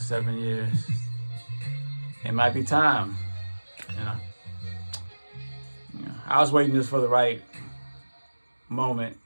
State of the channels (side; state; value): both; inverted; correlation -1.00